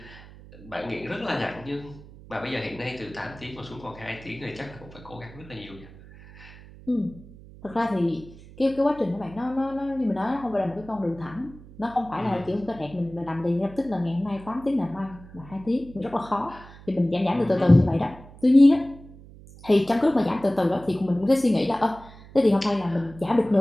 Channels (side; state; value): right; noise; hum, 20 dB below the sound